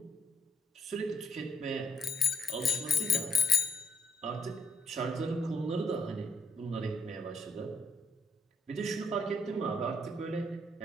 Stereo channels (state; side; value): normal; both; correlation 0.67